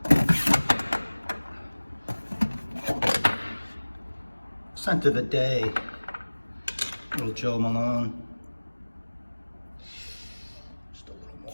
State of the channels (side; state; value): both; inverted; correlation -1.00